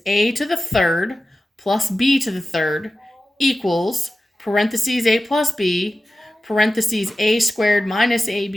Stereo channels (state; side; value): normal; both; correlation 0.94